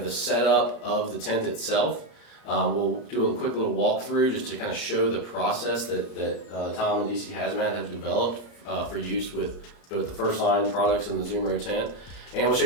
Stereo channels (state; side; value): late; right; 34 ms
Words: the setup of the tent itself. We'll do a quick little walkthrough just to kind of show the process that Tom and DC Hazmat have developed for use with both the First Line products and the Zumro tent. And we'll show